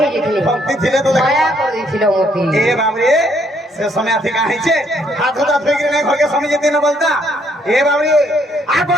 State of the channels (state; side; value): normal; both; correlation 0.69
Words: যেতলি ভক্তি ছিলে তো দেখো দয়া করে দিছিল মতি এ বাবরে সে সময় থেকে আইছে হাত হাতা ধই করে ঘরকে সময় যেতে না বলতা এ বাবরে আগো